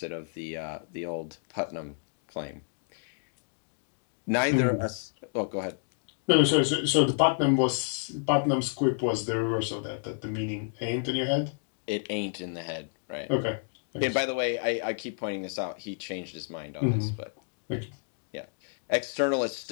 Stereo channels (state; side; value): silent; right; digital silence